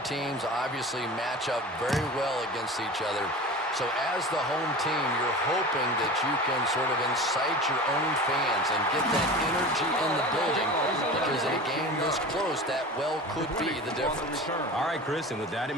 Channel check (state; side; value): normal; both; correlation 0.34